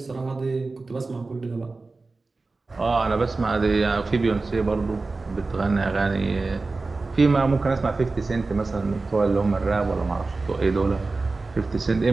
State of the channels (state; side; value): quieter; left; 3.7 dB